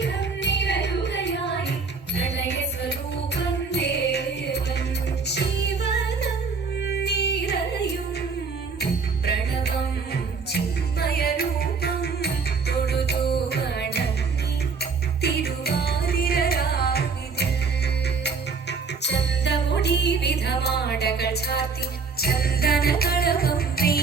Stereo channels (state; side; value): quieter; left; 5.0 dB